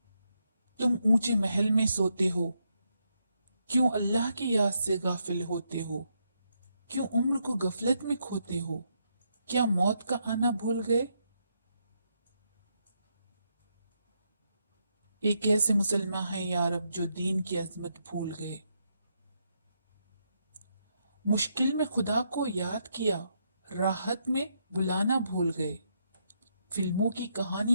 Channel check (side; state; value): both; inverted; correlation -0.79